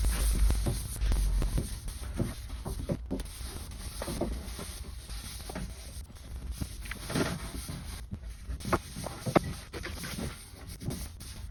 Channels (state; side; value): identical; both; correlation 1.00